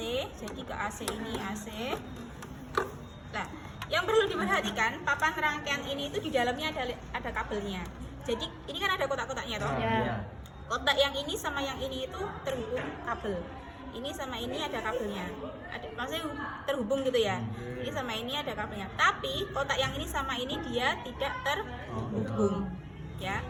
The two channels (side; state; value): both; identical; correlation 1.00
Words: jadi ke AC ini AC. Nah, yang perlu diperhatikan, papan rangkaian ini itu di dalamnya ada kabelnya. Jadi ini kan ada kotak-kotaknya toh. Ya. Kotak yang ini sama yang ini itu terhubung kabel. Ini sama ini ada kabelnya. Maksudnya terhubung gitu ya. Ini sama ini ada kabelnya. Tapi kotak yang ini sama ini dia tidak terhubung. Ya.